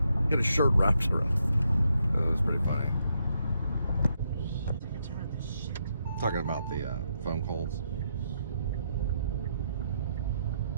Get a shirt wrapped around. Oh, that's pretty funny. Talking about the foam coals.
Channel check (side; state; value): both; inverted; correlation -0.79